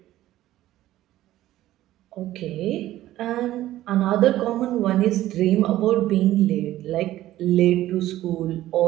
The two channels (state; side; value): quieter; left; 14.5 dB